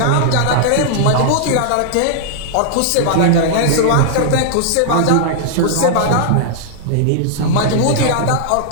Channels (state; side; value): different; both; correlation -0.01